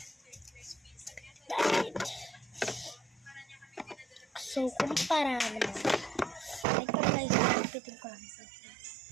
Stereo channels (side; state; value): left; drops out; at 6.7 s